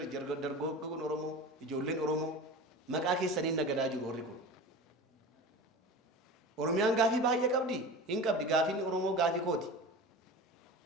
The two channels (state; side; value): normal; both; correlation 0.33